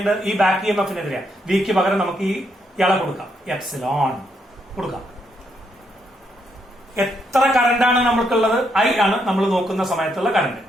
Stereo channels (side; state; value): both; normal; correlation 0.77